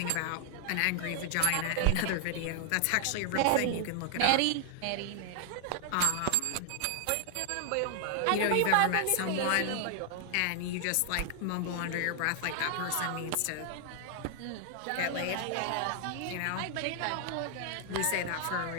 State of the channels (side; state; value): both; different; correlation 0.00